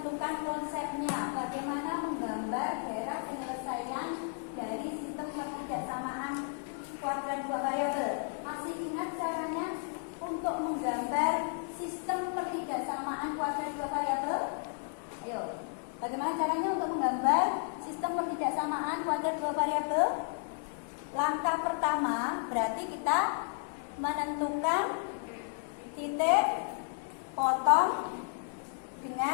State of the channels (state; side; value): silent; right; 56 dB below the other